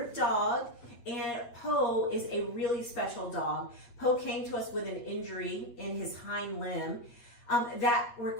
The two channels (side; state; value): right; late; 8.4 ms